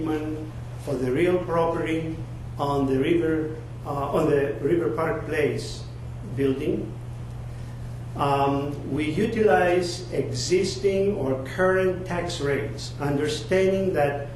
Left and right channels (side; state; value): both; identical; correlation 1.00